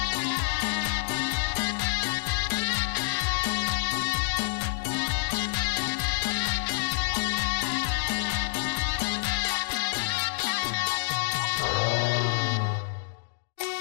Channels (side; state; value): right; silent; digital silence